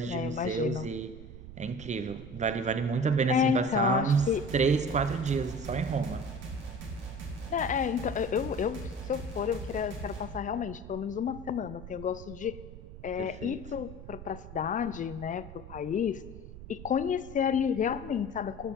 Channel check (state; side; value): noise; right; rumble, 14 dB below the sound